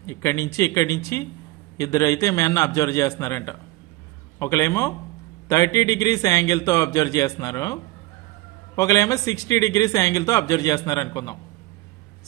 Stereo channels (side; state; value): left; quieter; 19.3 dB